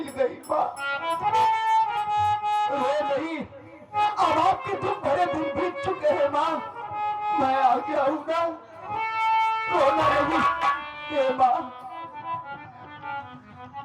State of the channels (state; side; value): identical; both; correlation 1.00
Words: गई माँ। रो नहीं, अब आपके दुख भरे दिन बीत चुके हैं माँ, मैं आ गया हूँ ना, रोना नहीं। हे माँ,